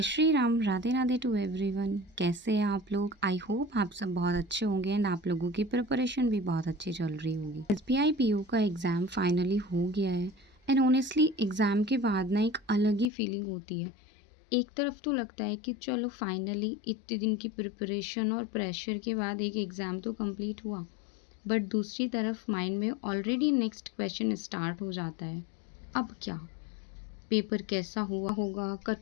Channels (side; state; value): right; drops out; at 13.1 s